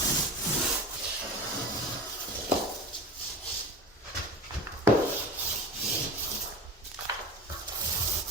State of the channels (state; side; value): normal; both; correlation 0.31